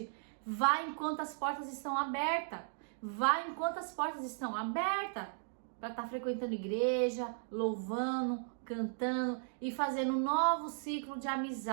vai enquanto as portas estão abertas, vai enquanto as portas estão abertas, para estar frequentando igreja, louvando, cantando e fazendo um novo ciclo de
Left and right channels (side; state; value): left; silent; digital silence